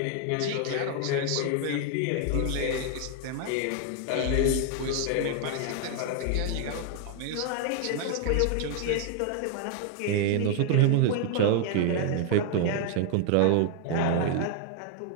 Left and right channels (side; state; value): both; different; correlation 0.00